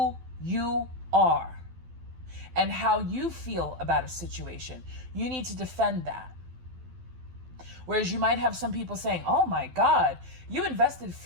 you are and how you feel about a situation. You need to defend that. Whereas you might have some people saying, oh my God, you invested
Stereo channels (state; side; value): late; left; 12 ms